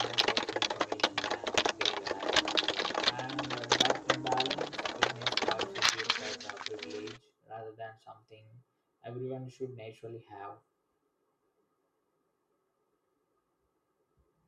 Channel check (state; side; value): identical; both; correlation 1.00